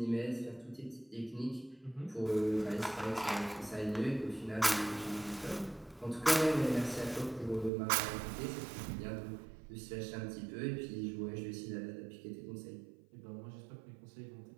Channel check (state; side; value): drops out; left; at 7.7 s